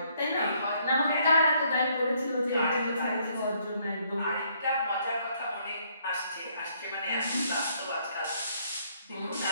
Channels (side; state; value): both; inverted; correlation -0.68